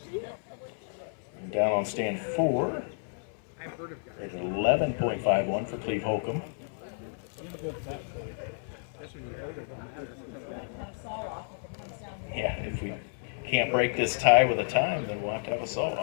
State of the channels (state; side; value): silent; right; 57 dB below the other